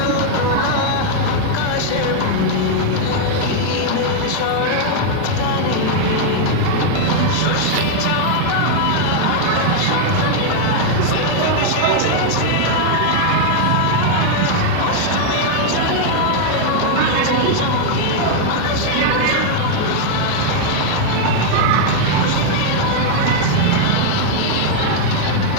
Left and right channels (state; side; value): different; both; correlation 0.00